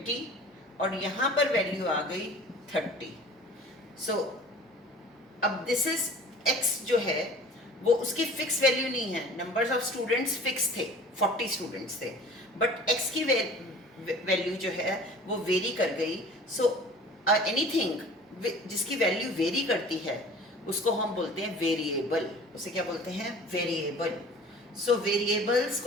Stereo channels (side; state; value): both; normal; correlation 0.44